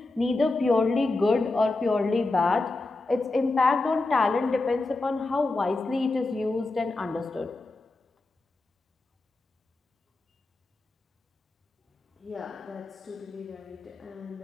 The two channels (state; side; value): quieter; right; 3.2 dB